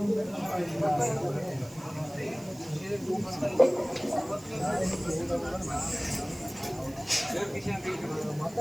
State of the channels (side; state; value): right; noise; hiss, 21 dB below the sound